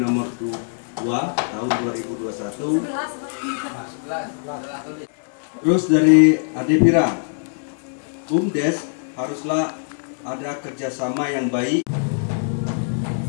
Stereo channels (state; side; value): silent; right; digital silence